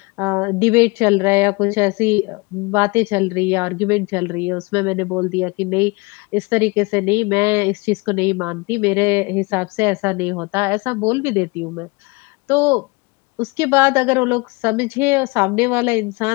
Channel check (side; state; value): right; quieter; 26.6 dB